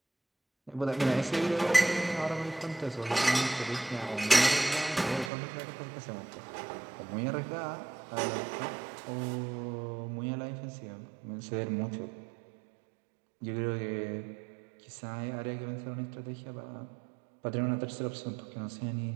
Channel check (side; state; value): left; drops out; at 5.3 s